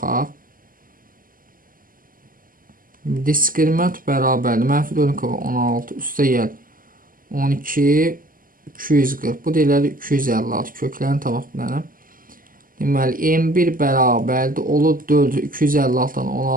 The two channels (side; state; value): left; late; 0.41 ms